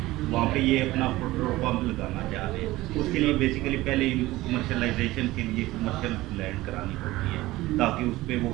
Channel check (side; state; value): left; quieter; 18.1 dB